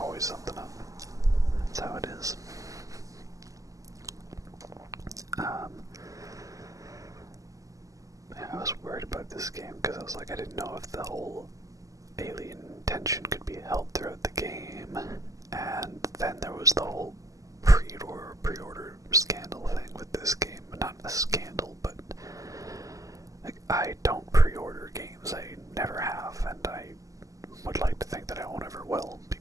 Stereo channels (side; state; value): left; late; 0.16 ms